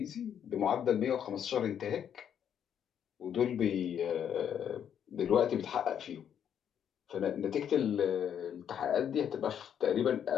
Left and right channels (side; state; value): right; quieter; 8.9 dB